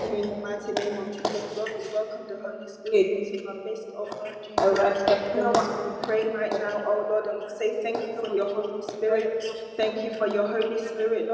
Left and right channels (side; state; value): both; identical; correlation 1.00